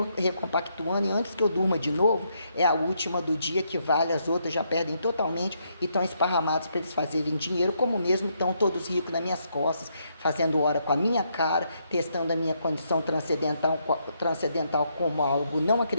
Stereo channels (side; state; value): both; inverted; correlation -0.76